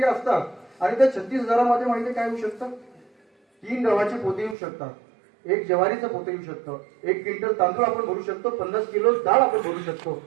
असतात आणि त्या 36,000 माहिती काय होऊ शकतं? 3 गव्हाचे पोते येऊ शकतात, 1 ज्वारीचं पोते येऊ शकतं, 1 क्विंटल तांदूळ आपण भरू शकतो, 50 किलो डाळ आपण भरू शकतो,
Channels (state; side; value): drops out; left; at 4.5 s